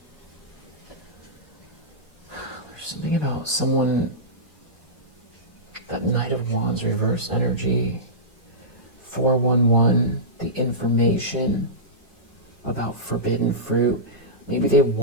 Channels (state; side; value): normal; both; correlation -0.16